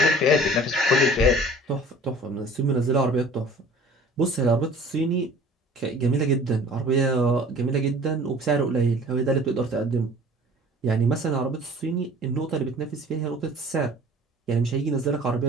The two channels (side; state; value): both; normal; correlation 0.47